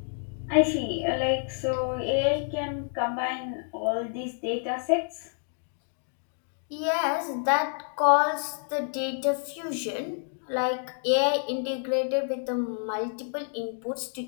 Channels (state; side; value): silent; right; 57 dB below the other